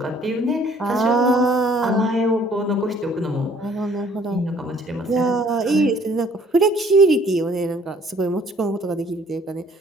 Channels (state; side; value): normal; both; correlation 0.58